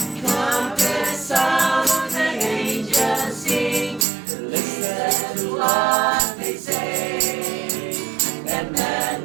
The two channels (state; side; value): drops out; left; at 4.0 s